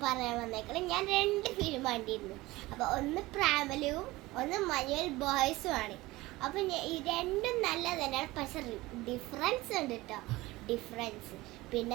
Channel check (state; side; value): quieter; left; 19.7 dB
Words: പറയാൻ വന്നേക്കണം, ഞാൻ 2 ഫിലിം കണ്ടിരുന്നു. അപ്പോൾ ഒന്ന് പ്രാമലും ഒന്ന് മഞ്ഞുവൽ ബോയ്സും ആണ്. അപ്പോൾ ഈ രണ്ടും നല്ല തന്നെയാണ്, പക്ഷെ ഡിഫറൻസ് ഉണ്ട് കേട്ടോ. ഡിഫറൻസ്